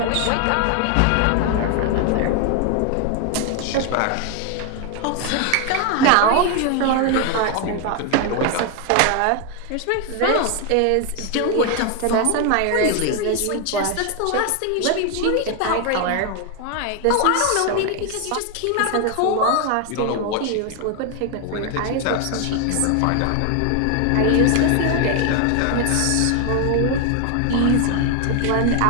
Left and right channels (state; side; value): different; both; correlation 0.01